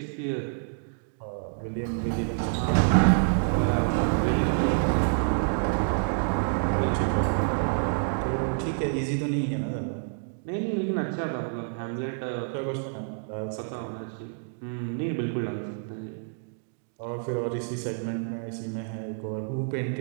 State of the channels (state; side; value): silent; left; digital silence